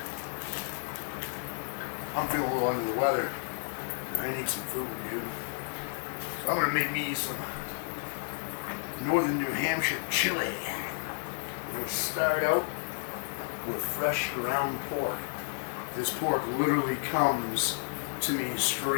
I'm feeling a little under the weather. I need some food, dude. So I'm gonna make me some northern New Hampshire chili. I'm gonna start out with fresh ground pork. This pork literally comes to me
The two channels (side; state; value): right; silent; digital silence